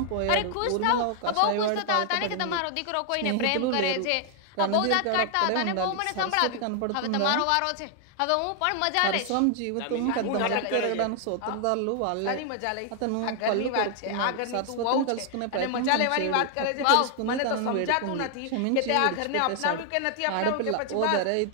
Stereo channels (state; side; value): different; both; correlation 0.00